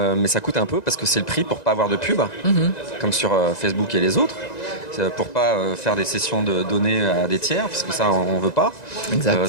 ça coûte un peu parce que c'est le prix pour pas avoir de pub, comme sur Facebook et les autres. C'est pour pas faire des sessions de données à des tiers, parce que ça on veut pas. Exact.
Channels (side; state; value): right; late; 1.9 ms